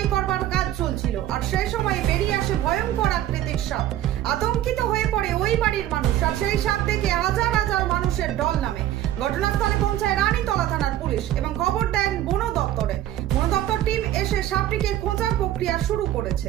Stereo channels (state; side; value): quieter; left; 12.8 dB